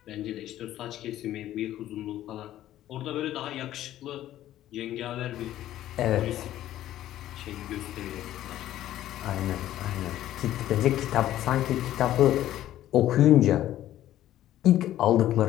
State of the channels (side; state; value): right; quieter; 13.2 dB